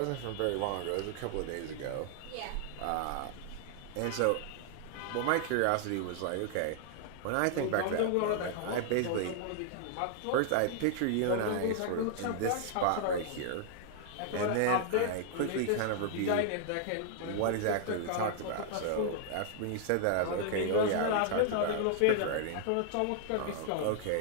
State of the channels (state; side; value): different; both; correlation -0.01